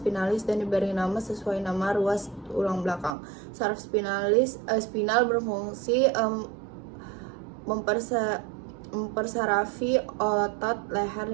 dan diberi nama sesuai nama ruas tulang belakang. Saraf spinal berfungsi mempersarafi otot leher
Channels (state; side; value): drops out; left; at 3.2 s